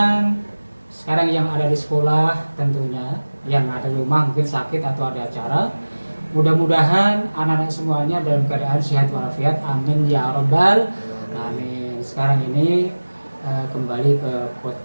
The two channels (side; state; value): both; inverted; correlation -1.00